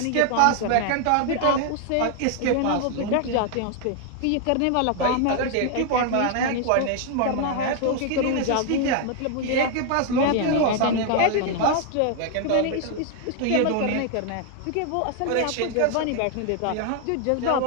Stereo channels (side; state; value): both; different; correlation 0.00